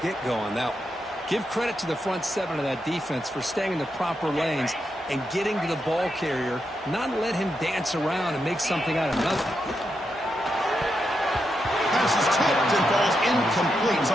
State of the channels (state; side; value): normal; both; correlation 0.84